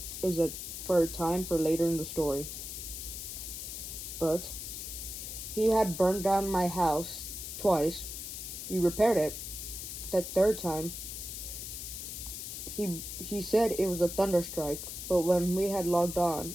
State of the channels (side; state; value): left; noise; hiss, 7 dB below the sound